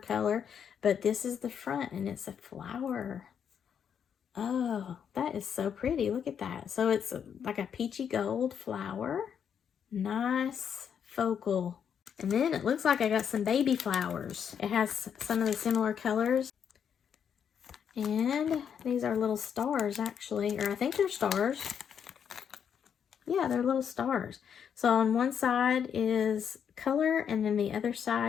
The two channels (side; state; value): right; quieter; 7.9 dB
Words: but this is the front, and it's a flower. Oh, that is so pretty. Look at that. So it's like a peachy gold flower. Nice focal. And then it looks like I got some baby flowers. It has some of the similar colors. And these are little stars, actually. Or I think they're stars. Yeah, they're little stars. So on one side is color, and then the other